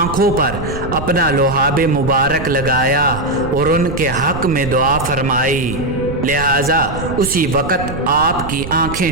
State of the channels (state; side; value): noise; right; rumble, 9 dB below the sound